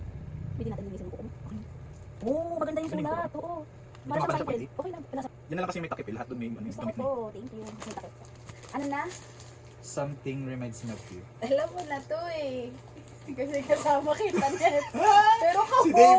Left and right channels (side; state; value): both; identical; correlation 1.00